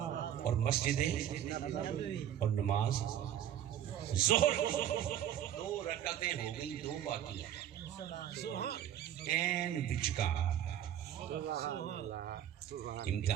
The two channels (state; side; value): quieter; left; 10.7 dB